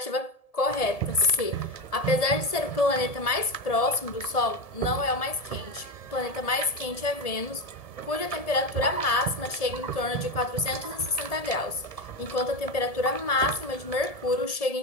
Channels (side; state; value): right; late; 1.7 ms